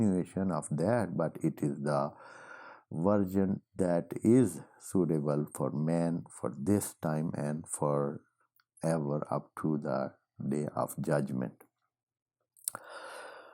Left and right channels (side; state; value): both; identical; correlation 1.00